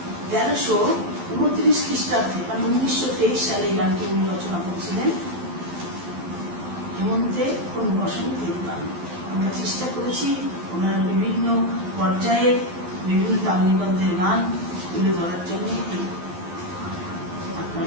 1329 খ্রিস্টাব্দে, মানে 1923 সালে এই গানটি উনি রচনা করেছিলেন। হেমন্তে কোন বসন্তের গান। আমরা চেষ্টা করেছি ওনার বিভিন্ন পর্যায়ে বিভিন্ন তালনিবদ্ধের গান তুলে ধরার জন্য।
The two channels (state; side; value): late; left; 11 ms